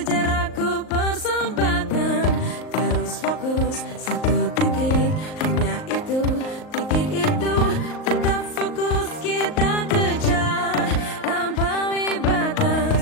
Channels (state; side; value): late; right; 38 ms